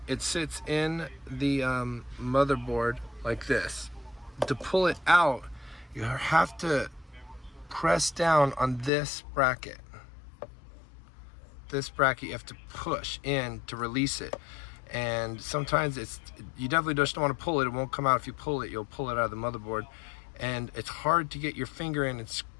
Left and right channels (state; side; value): drops out; right; at 8.9 s